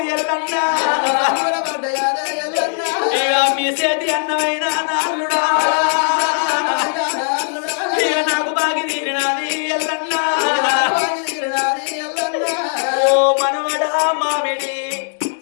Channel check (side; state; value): right; silent; digital silence